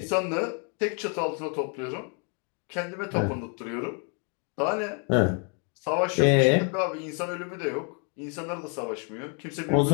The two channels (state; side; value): quieter; right; 38.9 dB